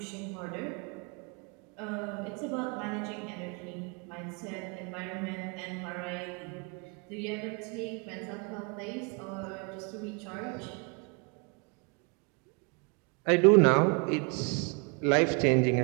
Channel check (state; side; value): quieter; left; 33.7 dB